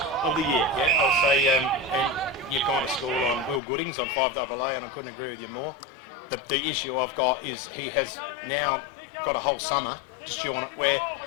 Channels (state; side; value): drops out; right; at 3.6 s